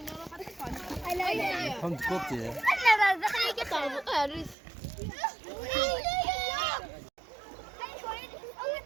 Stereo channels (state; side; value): drops out; left; at 4.5 s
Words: Tam tıkot ya.